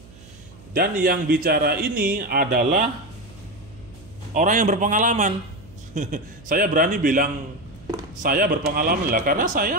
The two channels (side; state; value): right; noise; hum, 22 dB below the sound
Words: Dan yang bicara ini adalah orang yang berpengalaman. Saya berani bilang saya berpengalaman lah karena